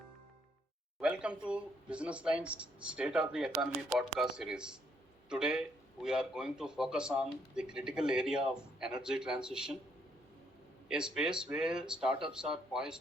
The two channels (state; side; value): normal; both; correlation 0.71